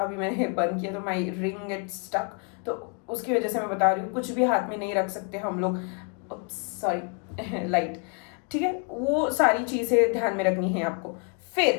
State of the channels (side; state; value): right; quieter; 36.7 dB